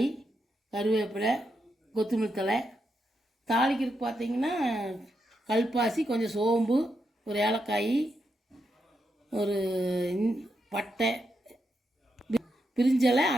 கருவேப்பிலை, கொத்தமல்லி தழை. தாளிக்கிறதுக்கு பார்த்தீங்கன்னா கல்பாசி, கொஞ்சம் சோம்பு, ஒரு ஏலக்காய், ஒரு பட்டை, பிரிஞ்சலை,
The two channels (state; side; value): normal; both; correlation 0.83